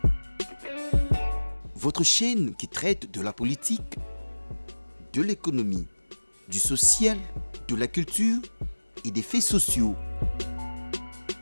Votre chaîne qui traite de la politique, de l'économie, du social, de la culture et des faits sociaux.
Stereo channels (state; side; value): inverted; both; correlation -1.00